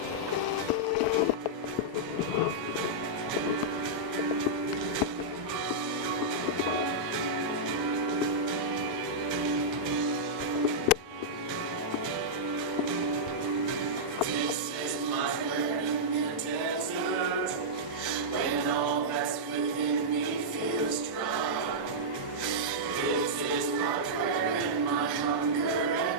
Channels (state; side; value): normal; both; correlation -0.10